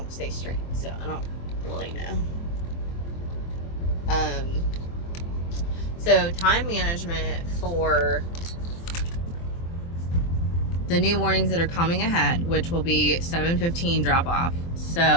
stay straight, so I don't really know. So time management for the new mornings that are coming ahead, which will be 7:15 drop off.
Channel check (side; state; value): right; late; 23 ms